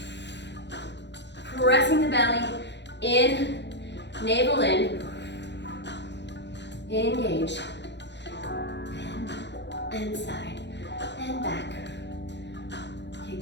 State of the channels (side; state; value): right; late; 0.51 ms